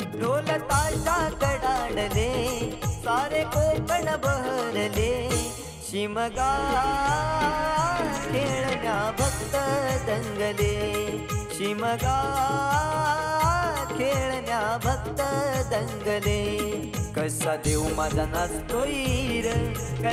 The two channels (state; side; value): identical; both; correlation 1.00